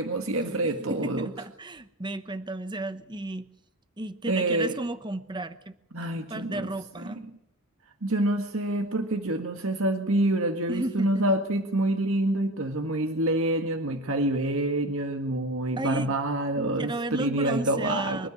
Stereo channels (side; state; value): both; normal; correlation 0.29